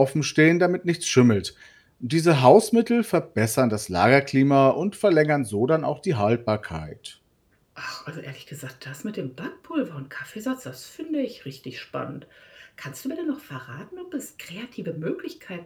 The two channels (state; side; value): identical; both; correlation 1.00